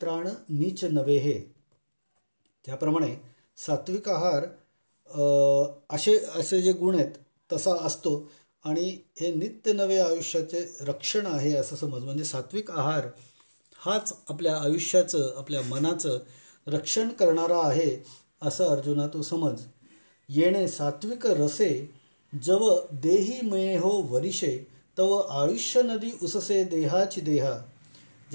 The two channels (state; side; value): inverted; both; correlation -1.00